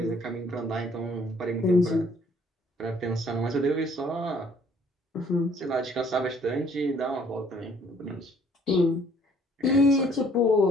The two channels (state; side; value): normal; both; correlation 0.60